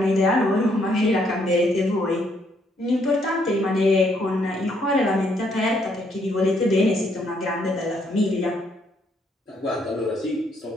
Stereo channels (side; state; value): both; normal; correlation 0.71